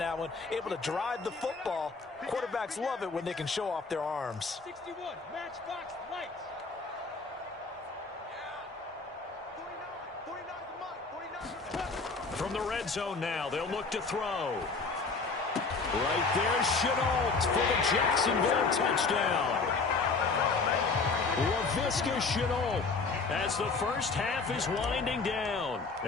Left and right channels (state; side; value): quieter; right; 4.2 dB